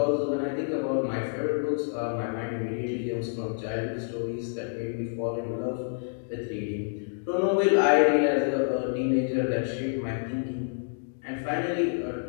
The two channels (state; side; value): silent; right; digital silence